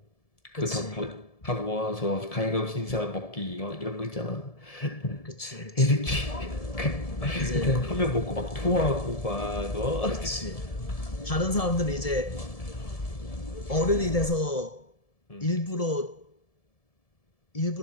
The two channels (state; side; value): late; right; 1.7 ms